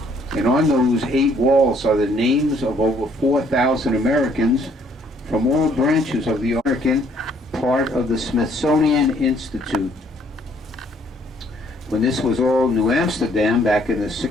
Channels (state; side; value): normal; both; correlation 0.64